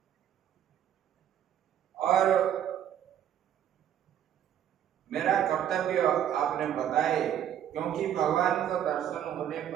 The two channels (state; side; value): quieter; left; 10.2 dB